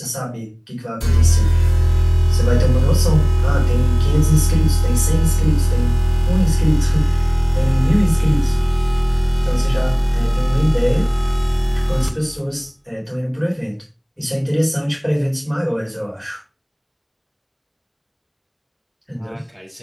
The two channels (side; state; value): both; identical; correlation 1.00